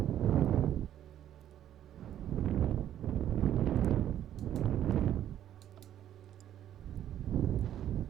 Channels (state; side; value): quieter; left; 11.2 dB